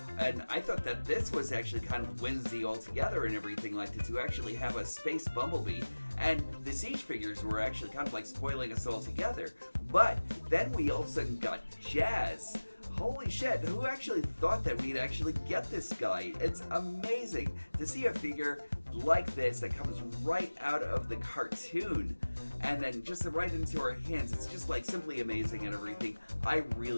and I thought that this was actually kind of whimsy altogether and everything like that, to actually have a space Bumblebee, and the Siege figures were actually kind of like spoiling us all together. But then we all of a sudden got Jazz. Holy shit, who actually thought that we'd actually get this guy? It's amazing to see a figure like this that comes right out of the cartoon and then just right into our hands. It's just like simply amazing and everything. I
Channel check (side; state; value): both; inverted; correlation -1.00